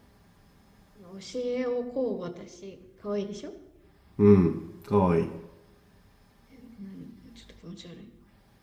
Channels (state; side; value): identical; both; correlation 1.00